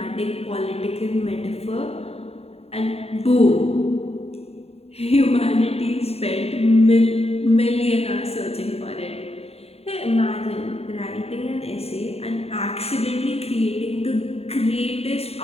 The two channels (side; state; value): right; late; 0.29 ms